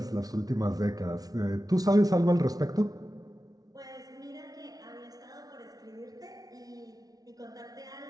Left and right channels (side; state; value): left; late; 0.18 ms